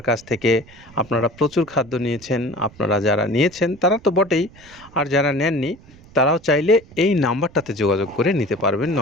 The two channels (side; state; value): right; noise; rumble, 23 dB below the sound